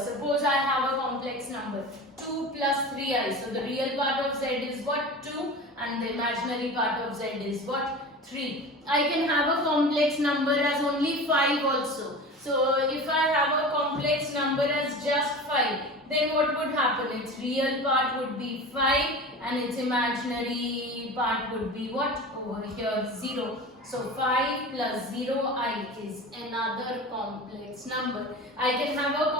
I have a complex number 2 plus 3i. So the real part of z is what? 2, and the imaginary part of z is what? 3. I can have a complex number as only 5 also. So if I have a complex number as just 5, then what would happen? Its real part would be 5 and its imaginary part would be what? Over here 0. So 5 plus 0i is another complex number. I can have a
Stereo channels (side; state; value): both; normal; correlation 0.33